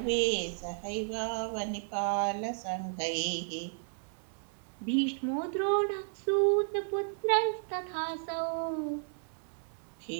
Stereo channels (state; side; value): silent; left; digital silence